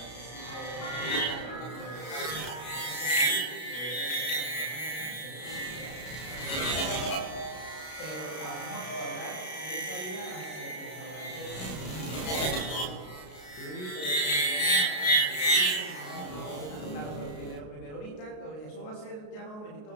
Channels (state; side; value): late; right; 33 ms